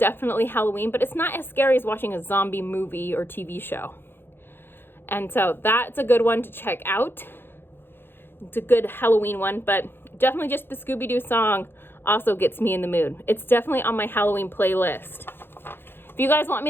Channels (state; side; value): late; right; 0.10 ms